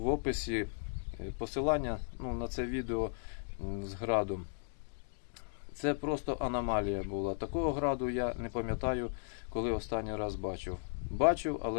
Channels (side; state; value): right; silent; digital silence